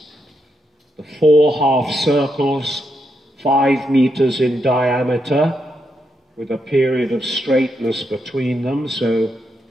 The 4 half circles, 5 meters in diameter with a period of straightness between them. So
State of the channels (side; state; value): both; normal; correlation 0.82